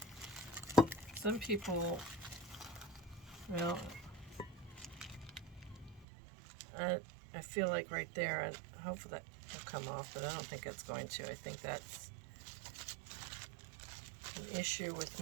Some people, well, I feel like right there, hopefully that will come off, but I don't think it's going to. I think that's an issue with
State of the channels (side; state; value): left; drops out; at 6.1 s